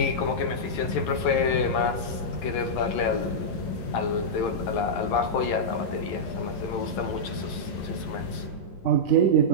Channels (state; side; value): late; right; 11 ms